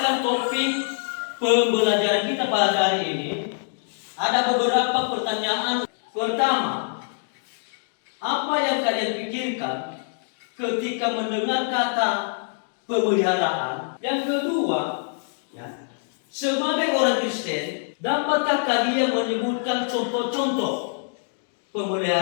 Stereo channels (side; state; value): right; silent; digital silence